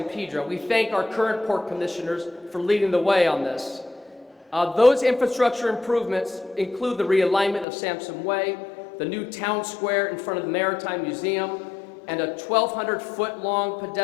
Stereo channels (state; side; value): drops out; right; at 7.7 s